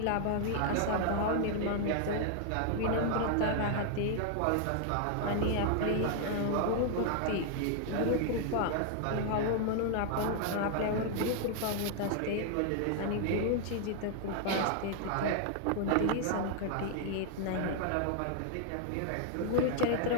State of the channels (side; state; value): both; different; correlation 0.00